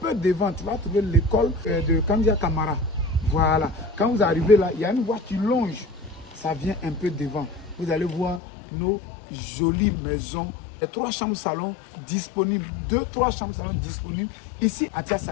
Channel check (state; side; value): drops out; right; at 8.4 s